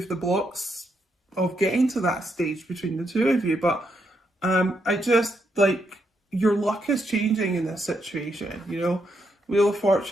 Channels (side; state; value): both; normal; correlation 0.79